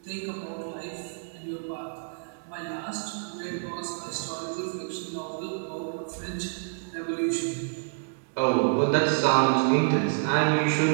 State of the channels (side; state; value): left; silent; digital silence